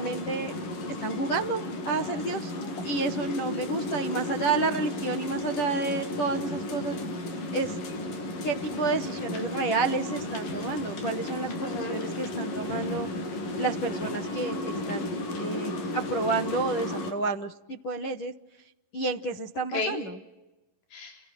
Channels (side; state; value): right; late; 11 ms